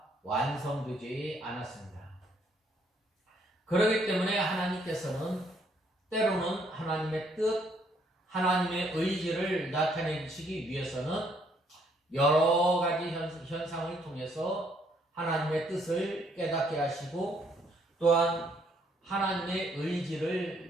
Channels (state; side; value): normal; both; correlation 0.68